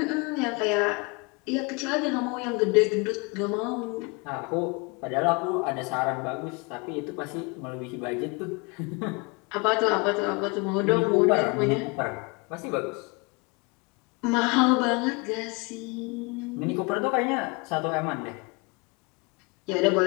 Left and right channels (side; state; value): right; quieter; 29.2 dB